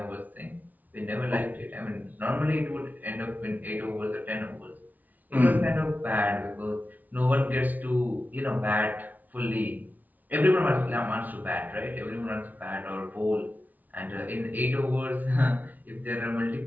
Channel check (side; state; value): left; late; 0.079 ms